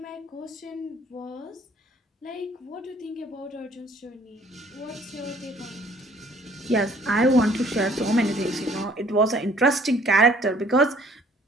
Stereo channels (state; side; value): normal; both; correlation 0.58